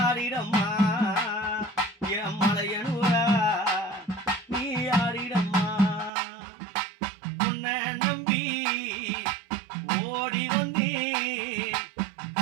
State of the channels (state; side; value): drops out; left; at 6.1 s